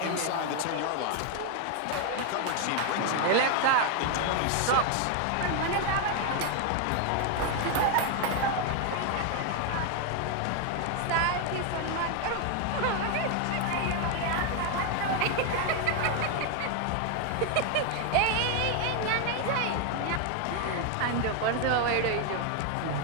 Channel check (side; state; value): both; different; correlation 0.01